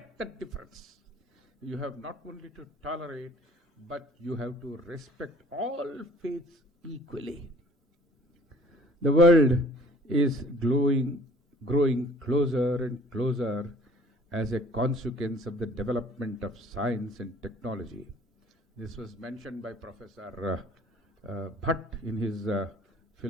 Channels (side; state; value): both; normal; correlation 0.53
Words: that difference. You have not only to tolerate, but you have to respect all faiths equally. The world is growing closer and closer as a consequence of the development of science and technology. This was mentioned by Professor Bhatt in his